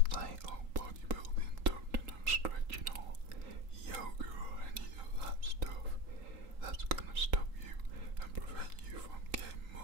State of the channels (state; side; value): late; left; 3.8 ms